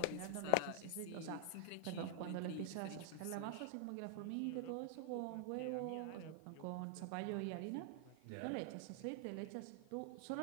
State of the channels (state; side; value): different; both; correlation 0.00